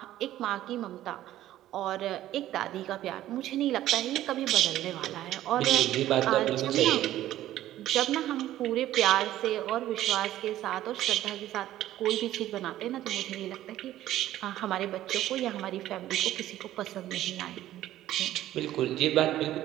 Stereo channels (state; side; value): quieter; left; 13.6 dB